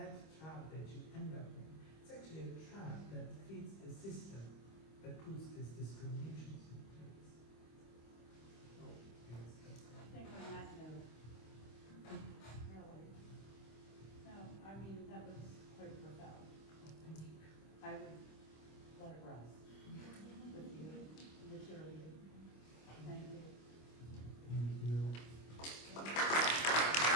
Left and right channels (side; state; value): right; late; 25 ms